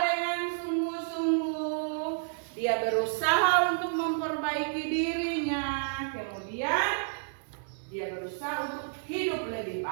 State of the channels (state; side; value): silent; left; digital silence